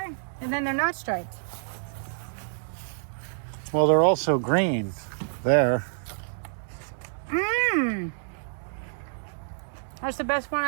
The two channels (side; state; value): left; silent; 59 dB below the other